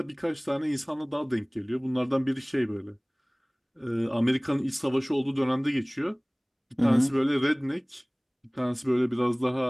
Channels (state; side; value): identical; both; correlation 1.00